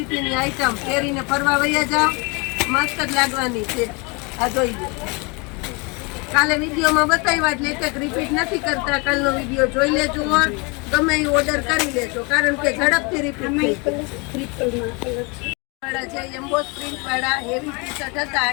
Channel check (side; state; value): right; quieter; 29.9 dB